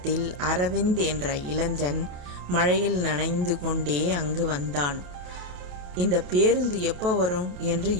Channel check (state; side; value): late; left; 28 ms